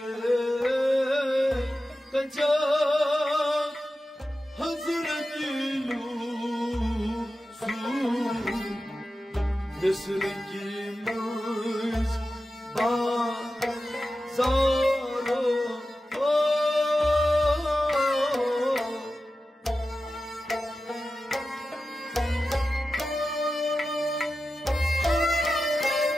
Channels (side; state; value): both; normal; correlation 0.93